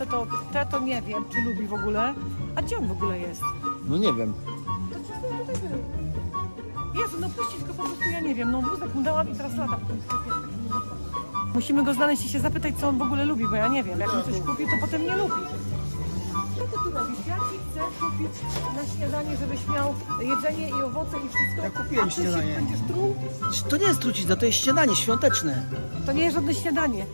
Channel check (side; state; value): both; inverted; correlation -1.00